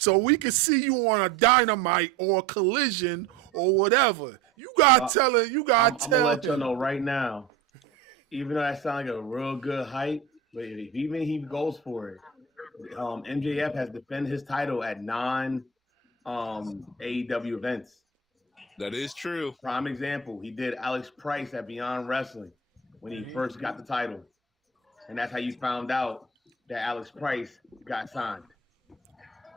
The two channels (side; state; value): left; quieter; 6.0 dB